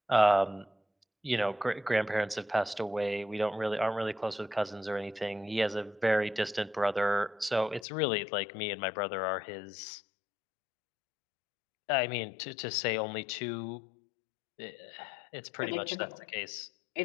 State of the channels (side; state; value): right; drops out; at 7.9 s